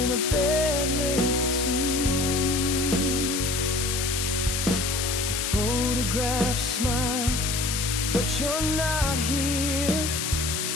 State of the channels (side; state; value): left; noise; hiss, 1 dB below the sound